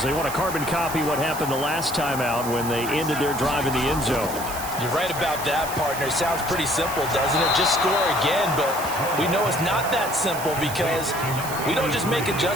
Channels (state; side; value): noise; right; hiss, 10 dB below the sound